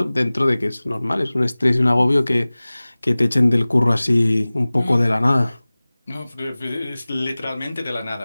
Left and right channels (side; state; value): both; inverted; correlation -0.99